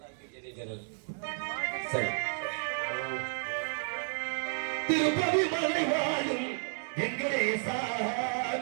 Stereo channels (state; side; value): silent; left; 56 dB below the other